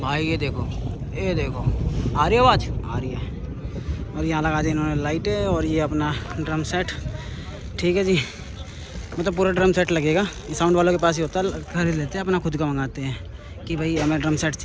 ये देखो आ रही है आवाज़, आ रही है। और यहाँ लगा दी इन्होंने लाइटें, और ये अपना ड्रम सेट, ठीक है जी। मतलब पूरा ड्रम सेट लगेगा, साउंड वालों के पास ही होता है, खरीद लेते हैं, अपना खुद का मंगाते हैं कि भाई हमें ड्रम सेट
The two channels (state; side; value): identical; both; correlation 1.00